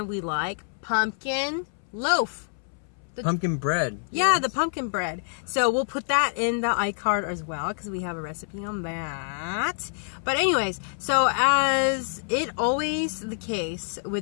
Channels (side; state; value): right; silent; 60 dB below the other